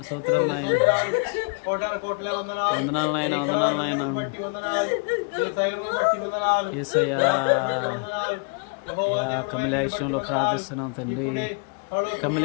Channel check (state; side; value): quieter; right; 36.6 dB